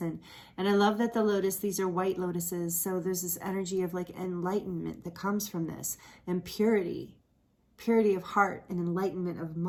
And I love that the lotus, these are white lotuses. So there's this energy of like enlightenment that comes from this, and purity of heart and enlightenment of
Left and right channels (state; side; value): identical; both; correlation 1.00